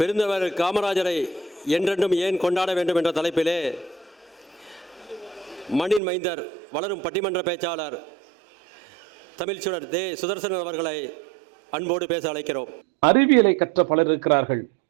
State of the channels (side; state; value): left; drops out; at 6.0 s